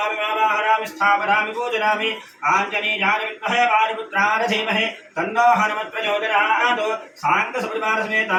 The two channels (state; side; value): identical; both; correlation 1.00